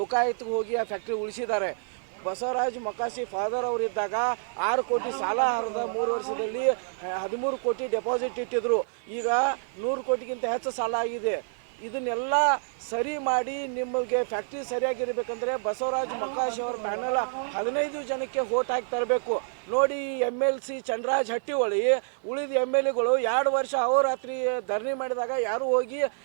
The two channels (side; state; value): left; silent; digital silence